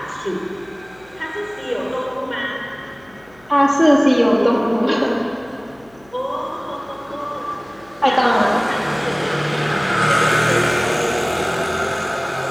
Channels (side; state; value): left; noise; hum, 29 dB below the sound